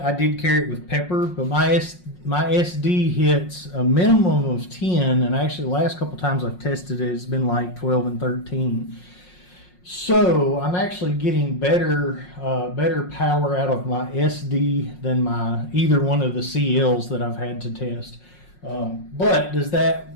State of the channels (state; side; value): late; right; 5.5 ms